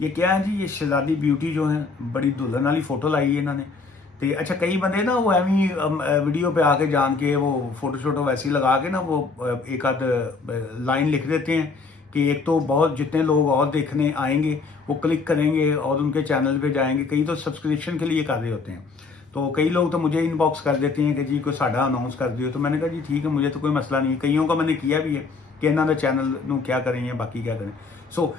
ये क्या है जी, ये शहजादी ब्यूटी जो है बड़ी दुल्हन वाली फोटो लाई है इन्होंने। तो अच्छा, कई बंदे ना वो एवं वीडियो पे आके जान के वो फोटो शोटो वैसी लगा के ना वो एक आध लाइन लिख देते हैं कि एक तो बहुत जितने लोग और देखने आएंगे वो क्लिक करेंगे और उनके चैनल पे जाएंगे। कई तो सब्सक्रिप्शन के लिए कर रहे होते हैं, तो कई लोग तो मुझे इनबॉक्स कर देते हैं कि जी कोई साडा अनाउंस कर दियो। तो मैंने कहा जी ठीक है, मुझे तो कोई मसला नहीं है। कईयों का मैंने किया भी है कि इन्हों का चैनल नू क्या करें या बाकी क्या करें। सो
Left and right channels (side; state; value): right; quieter; 4.3 dB